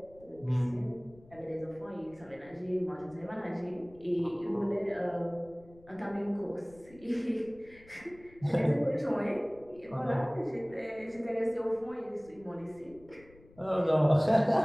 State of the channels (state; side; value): noise; left; rumble, 24 dB below the sound